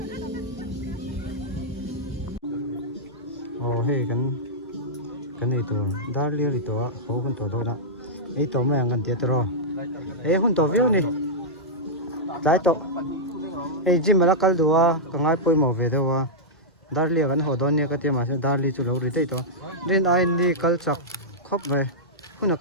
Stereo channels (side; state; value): both; normal; correlation -0.10